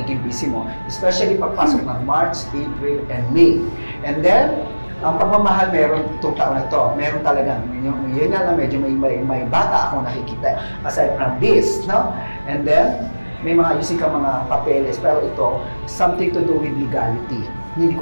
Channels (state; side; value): inverted; both; correlation -1.00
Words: busy mo. Especially pagpasok ng March, April, and May. And then, ang pagmamahal meron itong taon na ito. Meron talaga. Yun nga lang, medyo may bata akong nakikita. Aside from this, no? And then, may mga ayusin ka mga papeles. Pero ito, something to do with legality. Hindi